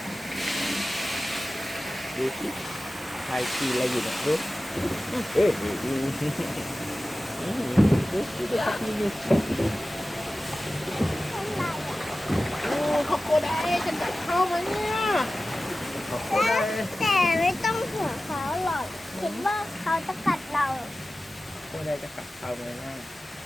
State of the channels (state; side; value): normal; both; correlation 0.95